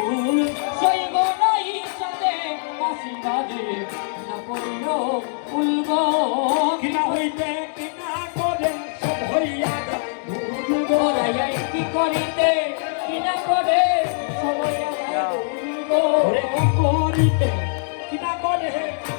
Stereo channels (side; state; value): right; silent; 64 dB below the other